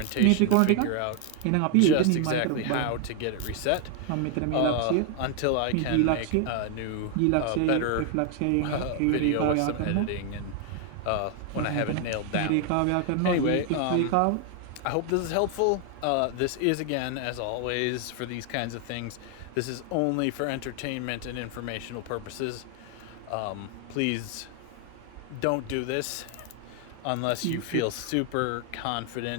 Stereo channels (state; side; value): different; both; correlation 0.00